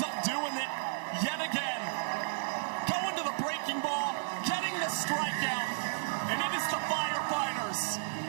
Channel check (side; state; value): left; silent; digital silence